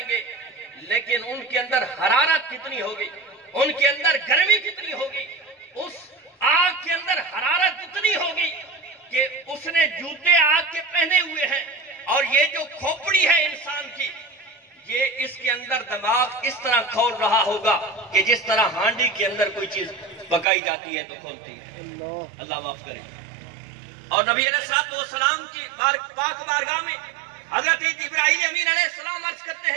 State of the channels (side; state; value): left; drops out; at 20.5 s